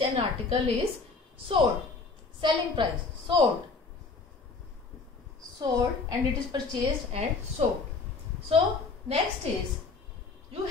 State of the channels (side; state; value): right; quieter; 4.2 dB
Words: an article is sold. Selling price. Sold. And it is purchased and sold. So next is you